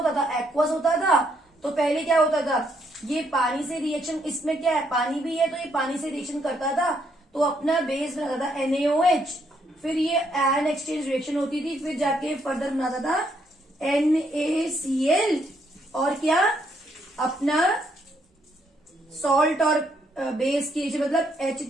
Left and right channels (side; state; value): both; normal; correlation 0.73